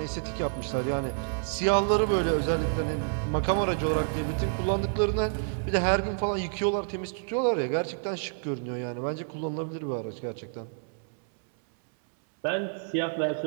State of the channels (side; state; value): left; silent; 59 dB below the other